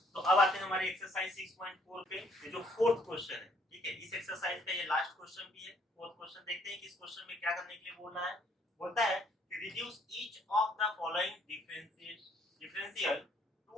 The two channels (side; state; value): both; normal; correlation 0.65